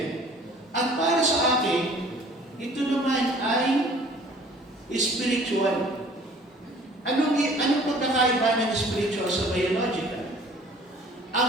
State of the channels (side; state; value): both; normal; correlation 0.51